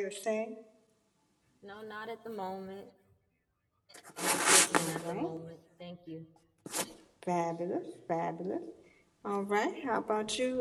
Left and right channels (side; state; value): both; identical; correlation 1.00